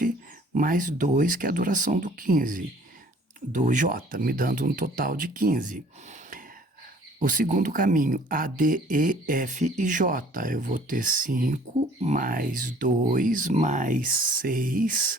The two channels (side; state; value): both; normal; correlation 0.54